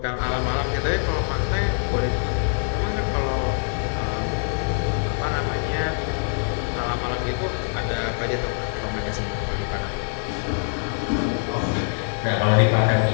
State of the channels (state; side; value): silent; right; 62 dB below the other